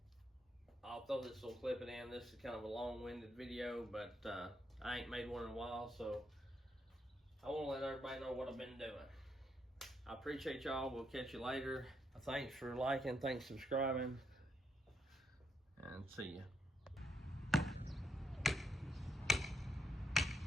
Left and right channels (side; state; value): both; normal; correlation 0.77